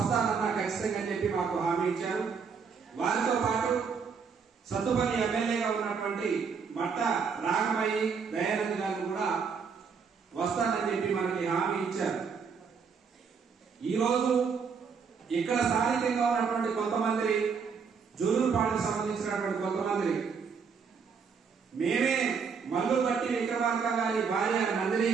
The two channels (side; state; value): left; quieter; 5.9 dB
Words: ఖచ్చితంగా చెప్పి మాకు హామీ ఇచ్చారు. వారితో పాటు సత్తుపల్లి ఎమ్మెల్యేగా ఉన్నటువంటి మట్ట రాగమయ్యి దయానంద్ గారు కూడా వస్తానని చెప్పి మనకి హామీ ఇచ్చారు. ఈరోజు ఇక్కడ స్థానికంగా ఉన్నటువంటి కొంతమంది జుల్లూరుపాడుకు సంబంధించినటువంటి కొంతమంది మేమే మల్లు బట్టి విక్రమార్క గారి భార్య నందిని